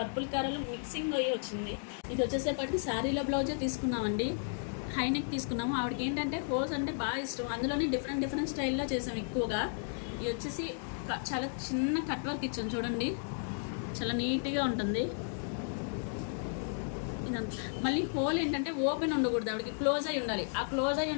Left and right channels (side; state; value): right; silent; digital silence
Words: colour mixing అయ్యి వచ్చింది. ఇది వచ్చేసేపటికి శారీలో బ్లౌజే తీసుకున్నామండి, హైనెక్ తీసుకున్నాము. ఆవిడకి ఏంటంటే హోల్స్ అంటే బాగా ఇష్టం, అందులోనే డిఫరెంట్ స్టైల్లో చేసాం ఎక్కువగా. ఇది వచ్చేసి చాలా చిన్న కట్ వర్క్ ఇచ్చాం చూడండి, చాలా నీట్గా ఉంటుంది ఇదంతా. మళ్ళీ హోల్ ఏంటంటే ఓపెన్ ఉండకూడదు, ఆవిడకి క్లోజ్ అయి ఉండాలి. ఆ క్లోజ్ అయి